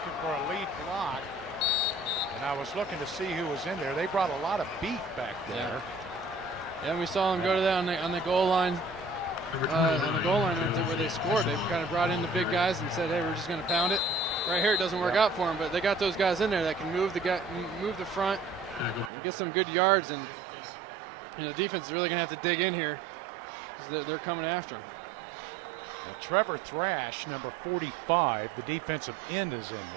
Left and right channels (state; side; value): drops out; left; at 19.1 s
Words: for a lead block, and I was looking to see who was in there. They brought a lot of beef back there. Yeah, and we saw them go to that on the goal line. On the goal line where they scored, they kind of brought in the big guys and said, "Hey, we're just going to pound it." Right here, it doesn't work out for them, but they got those guys in there that can move the front, and get some good yards, and the defense is really going to have to dig in here because they're coming after him. Well, Trevor Thrash, number 45, the defensive end, is in